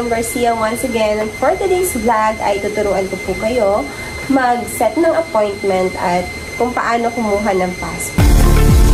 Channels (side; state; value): both; identical; correlation 1.00